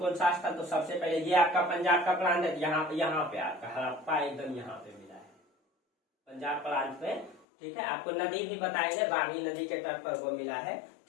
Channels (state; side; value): drops out; right; at 7.5 s